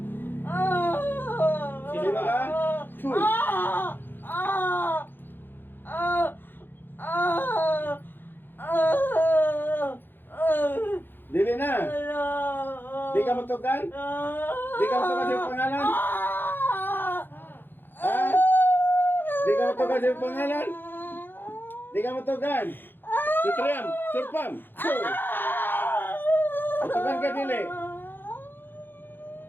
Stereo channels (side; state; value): right; late; 0.097 ms